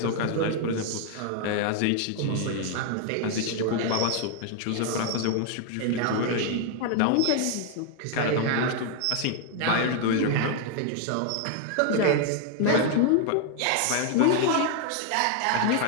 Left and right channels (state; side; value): different; both; correlation 0.00